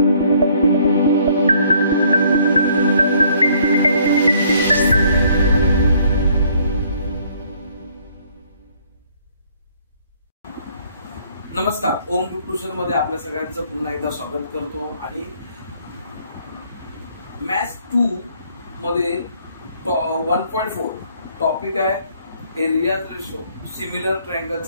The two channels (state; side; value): inverted; both; correlation -0.63